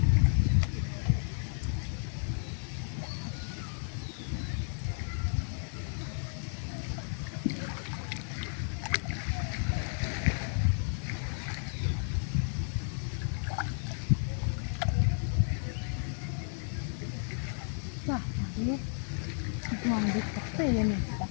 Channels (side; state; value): right; silent; 56 dB below the other